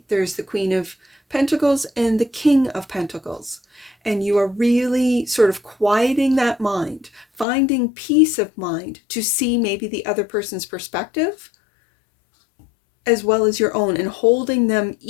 There's the Queen of Pentacles and the King of Pentacles. And you are really sort of quieting that mind, finding peace of mind to see maybe the other person's perspective as well as your own, and holding them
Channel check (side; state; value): right; drops out; at 7.5 s